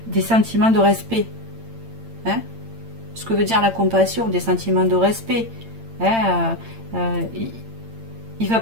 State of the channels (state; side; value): late; left; 8.8 ms